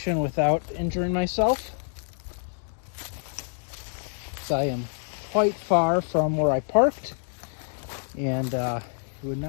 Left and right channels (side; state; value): right; silent; digital silence